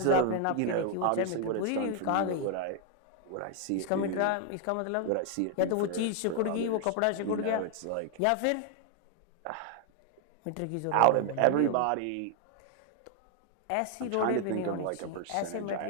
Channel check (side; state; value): both; different; correlation 0.00